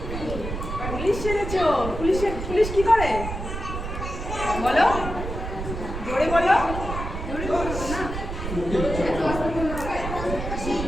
Police সেজেছো। Police কি করে বলো? জোরে বলো।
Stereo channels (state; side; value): noise; right; rumble, 6 dB below the sound